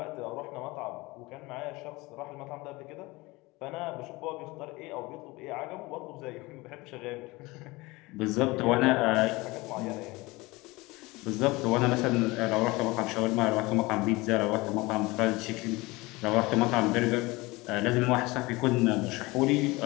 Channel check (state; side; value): quieter; right; 22.5 dB